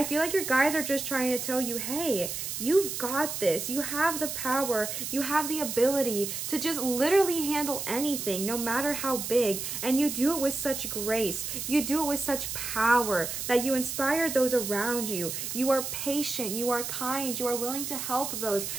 feel like your guides are just trying to tell you, hey, you've got this. You have the power. You have the ability to just literally handle anything, no matter how big. And you do it with such grace. You do it with such power that you inspire those around you. You are patient. You are kind. You are willing to help those.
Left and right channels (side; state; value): right; noise; hiss, 5 dB below the sound